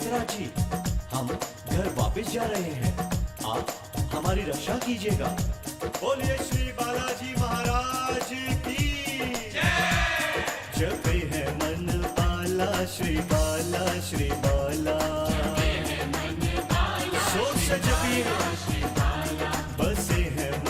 जी, हम घर वापस जा रहे हैं, आप हमारी रक्षा कीजिएगा। बोलिए श्री बालाजी महाराज की जय। जपे है मन बाला श्री बाला, श्री बाला सोच से जपी बसे है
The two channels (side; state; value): both; identical; correlation 1.00